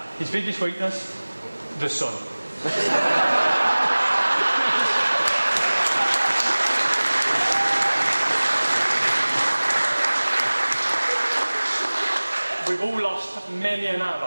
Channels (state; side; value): inverted; both; correlation -1.00